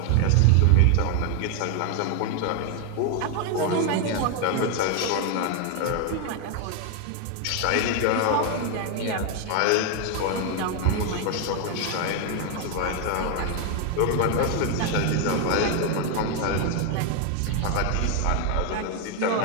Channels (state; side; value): different; both; correlation 0.01